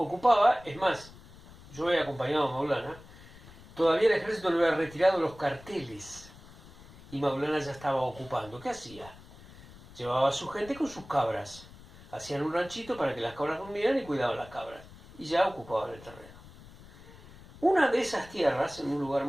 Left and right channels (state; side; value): noise; left; rumble, 20 dB below the sound